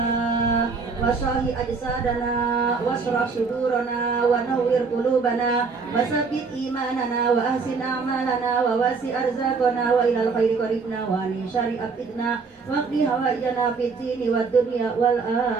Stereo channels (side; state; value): left; quieter; 4.8 dB